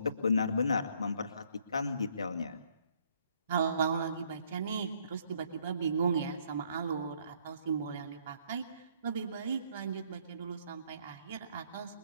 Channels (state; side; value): inverted; both; correlation -0.67